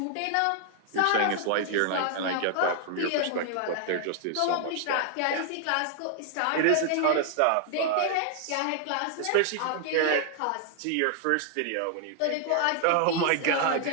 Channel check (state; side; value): different; both; correlation 0.00